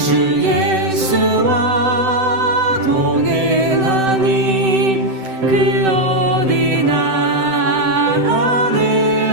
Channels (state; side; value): late; left; 7.8 ms